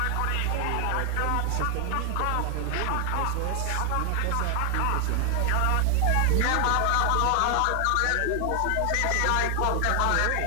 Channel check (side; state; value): both; different; correlation 0.00